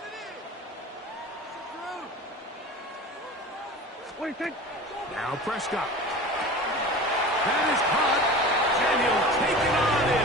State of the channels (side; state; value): both; normal; correlation 0.35